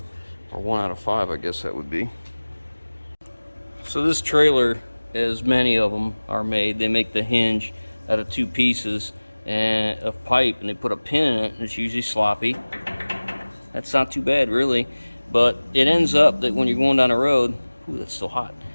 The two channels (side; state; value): both; inverted; correlation -1.00